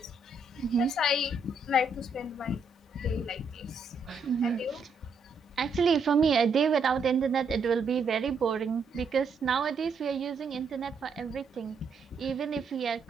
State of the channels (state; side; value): quieter; left; 3.8 dB